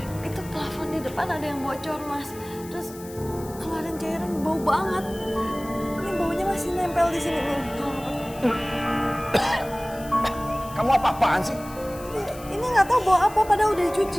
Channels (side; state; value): left; noise; hiss, 18 dB below the sound